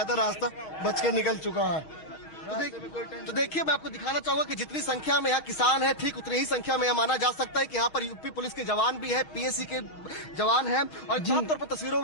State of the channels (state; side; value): late; right; 6.3 ms